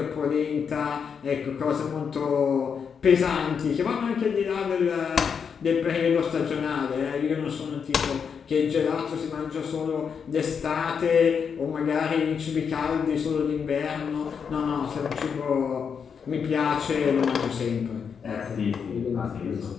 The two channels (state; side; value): quieter; right; 6.6 dB